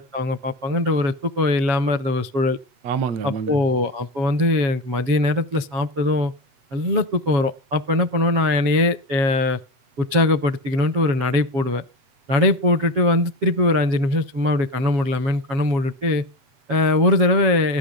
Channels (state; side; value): late; left; 7.3 ms